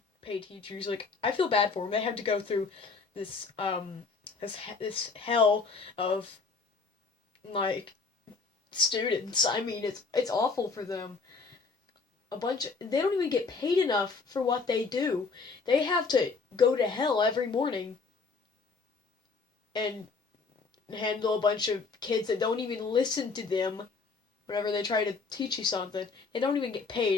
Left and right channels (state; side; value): quieter; right; 4.5 dB